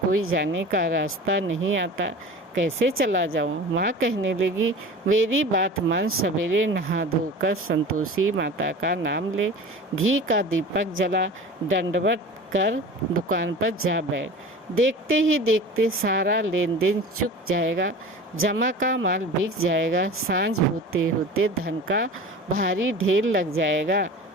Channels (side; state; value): both; normal; correlation 0.37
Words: जाने का रास्ता नहीं आता, कैसे चला जाऊँ? माँ कहने लगी, मेरी बात मान, सवेरे नहा धोकर संतोषी माता का नाम ले, घी का दीपक जला, दंडवत कर दुकान पर जा बैठ। देखते ही देखते सारा लेन देन चुक जाएगा, जमा का माल बिक जाएगा, सांझ होते होते धन का भारी ढेर लग जाएगा।